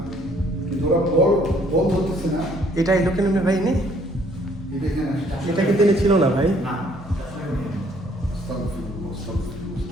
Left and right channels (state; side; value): normal; both; correlation 0.62